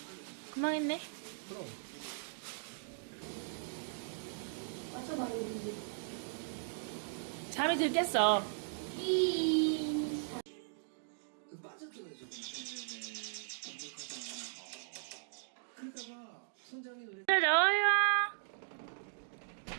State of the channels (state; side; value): silent; left; digital silence